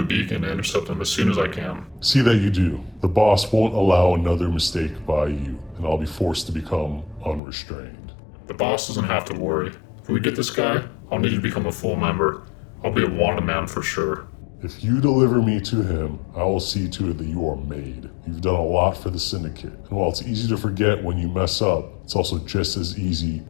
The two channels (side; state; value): right; drops out; at 7.4 s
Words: a beacon to intercept him as soon as I can. See that you do. The boss won't allow another mistake by you, and I'll be forced to become unrestrained. The boss doesn't have to worry. If we get this guy, I'll need you to become a full member. I'll be a wanted man for sure. If you deliver me to him, I will see to it that you are made. You've done a lot for the Syndicate, and while it's easy to forget when you mess up, it's also just as easy